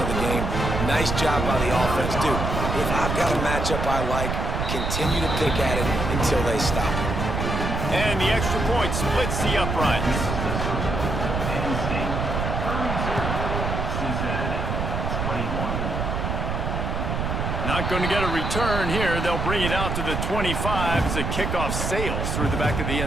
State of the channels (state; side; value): noise; right; rumble, 2 dB below the sound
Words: the game. Nice job by the offense, dude. If I've got a matchup I like, continue to pick at it until they stop it. And the extra point splits the uprights. Not going to get a return here. They'll bring it out to the 25 as the kickoff sails through the back of the